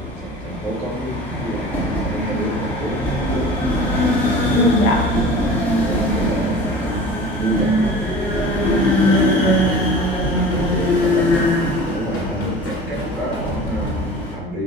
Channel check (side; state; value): both; normal; correlation 0.40